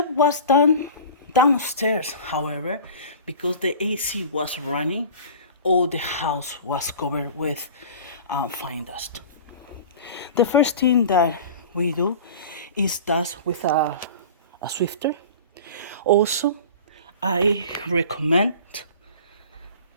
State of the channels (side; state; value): both; inverted; correlation -0.39